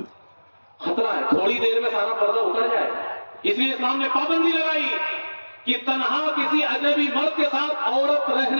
خطرہ ہے, تھوڑی دیر میں سارا پردہ اتر جائے. اس لیے اسلام نے پابندی لگائی کہ تنہا کسی اجنبی مرد کے ساتھ عورت رہ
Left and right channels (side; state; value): both; inverted; correlation -1.00